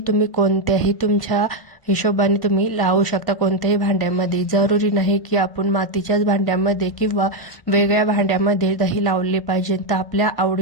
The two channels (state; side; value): late; right; 1.5 ms